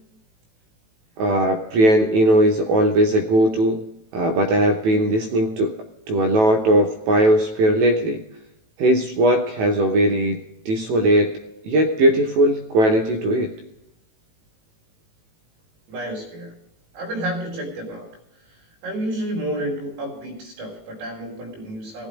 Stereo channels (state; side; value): late; left; 18 ms